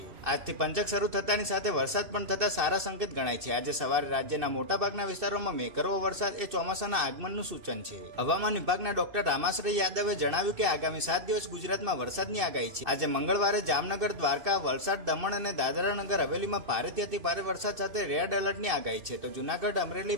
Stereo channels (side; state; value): left; late; 2.9 ms